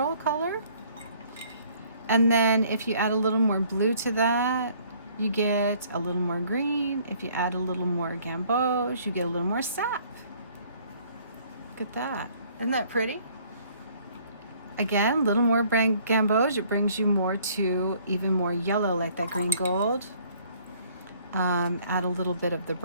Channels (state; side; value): inverted; both; correlation -0.59